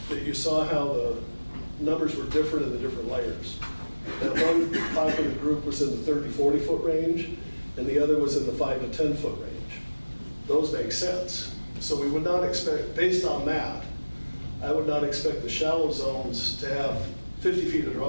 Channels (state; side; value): inverted; both; correlation -1.00